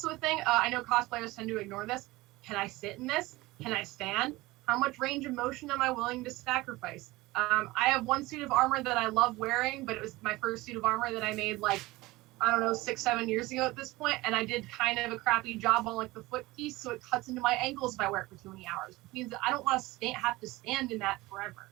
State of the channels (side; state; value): left; quieter; 20.1 dB